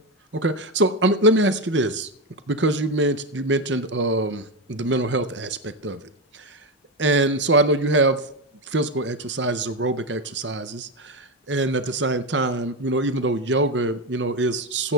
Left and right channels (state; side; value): normal; both; correlation 0.13